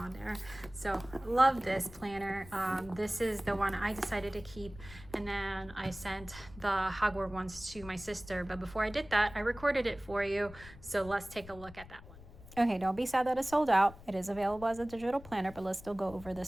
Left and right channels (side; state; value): left; noise; rumble, 18 dB below the sound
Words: there. So love this planner. This is the one I decided to keep, and then I sent the Hogwarts ones to my sister. But before I did that, I recorded it for you. So let's take a look at that one. Okay, don't be sad that it's sold out. It is available as a digital planner, but let's still go over